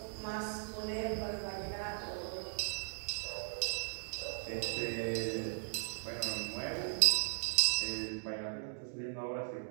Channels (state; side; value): silent; left; digital silence